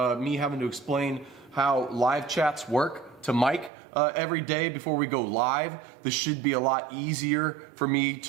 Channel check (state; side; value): drops out; left; at 3.7 s